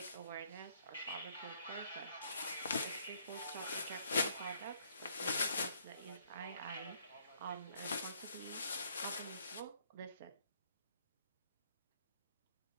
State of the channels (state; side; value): inverted; both; correlation -0.66